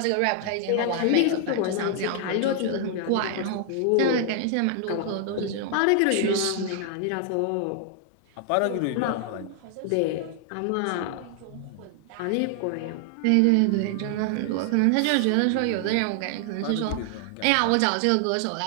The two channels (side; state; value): both; different; correlation 0.00